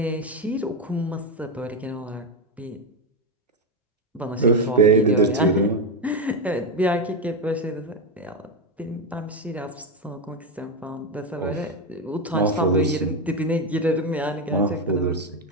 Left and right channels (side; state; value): both; normal; correlation 0.10